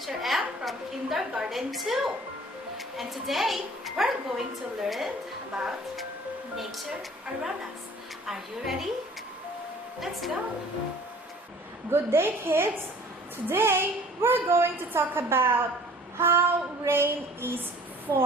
M from Kindergarten 2. And today, we're going to learn about nature around us. Are you ready? Let's go! Good day, kids! Today, we're going to talk about how rain is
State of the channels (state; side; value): normal; both; correlation 0.50